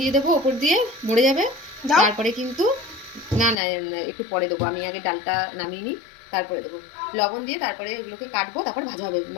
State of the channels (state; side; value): drops out; right; at 3.6 s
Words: দেবো ওপর দিয়ে, মরে যাবে। তারপরে কিন্তু না না একটু পরে দেবো, আমি আগে ডালটা নামিয়ে নিই, তারপরে দেবো লবণ দিয়ে। তারপরে এগুলোকে কাটবো, তারপর ভাজা হবে।